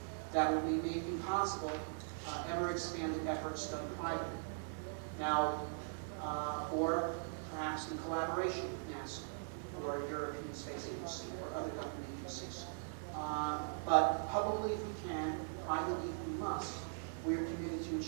that will be making possible ever expanded efforts done privately. Now, or perhaps in collaboration with NASA or European Space Agency or other government agencies. But publicly if we can, privately if we must, we are committed to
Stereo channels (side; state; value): left; silent; digital silence